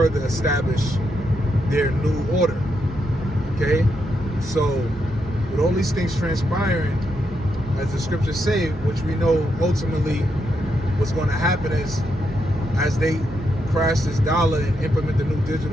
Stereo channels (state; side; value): normal; both; correlation 0.81